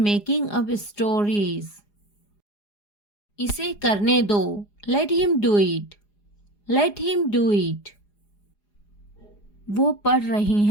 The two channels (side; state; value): right; late; 4.9 ms